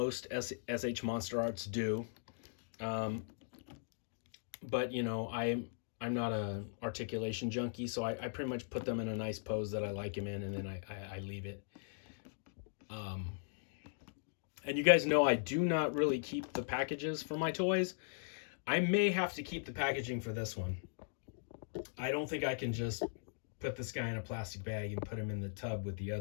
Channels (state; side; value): silent; right; digital silence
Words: S.H.Monsterarts do. But you know, I'm not a articulation junkie, so I pretty much put them in a nice pose that I like him in, and then I leave it. And you guys know I do not really keep the packages for my toys. I may have to keep the packaging for this one. I don't think I can just put this guy in a plastic bag and put him in the tub with the